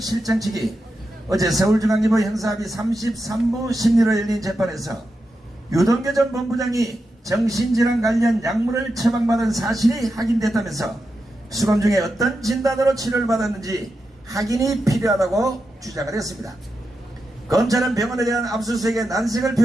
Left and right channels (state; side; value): normal; both; correlation 0.88